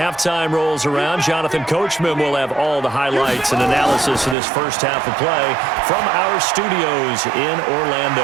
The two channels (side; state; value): left; drops out; at 4.4 s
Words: rolls around, Jonathan Coachman will have all the highlights and analysis of this first half of play from our studios in